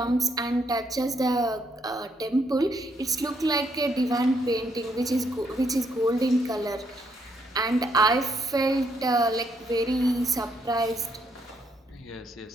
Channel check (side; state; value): both; normal; correlation 0.73